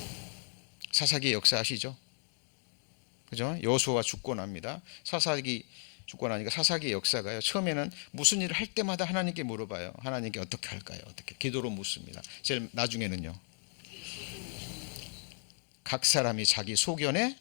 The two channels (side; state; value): right; silent; 55 dB below the other